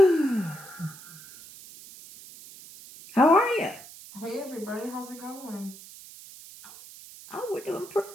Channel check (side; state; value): right; noise; hiss, 18 dB below the sound